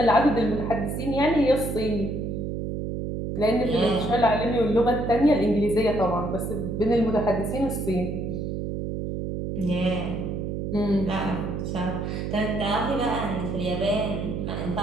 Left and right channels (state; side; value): noise; right; hum, 3 dB below the sound